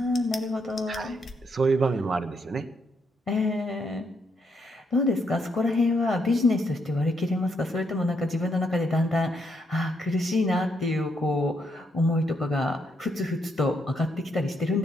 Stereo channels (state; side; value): normal; both; correlation 0.76